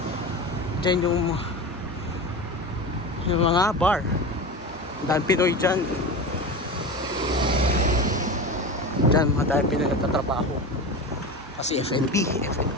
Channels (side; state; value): both; normal; correlation 0.26